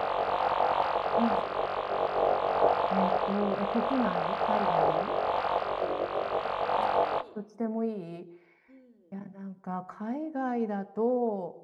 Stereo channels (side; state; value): both; identical; correlation 1.00